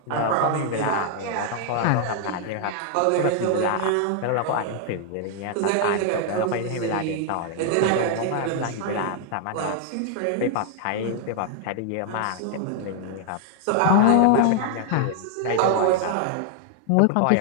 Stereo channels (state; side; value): different; both; correlation 0.00